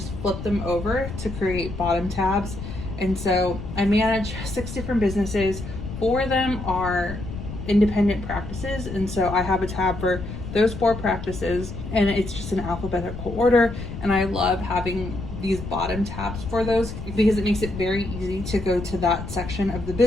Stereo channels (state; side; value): noise; left; rumble, 8 dB below the sound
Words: flip them over to create bottom tabs. And so I manage 6 different businesses. 4 of them are independent practices, and so I have a tab for those 4 practices, and it's just in alphabetical order. And I love having these bottom tabs for those because it makes it very easy to go to that section of the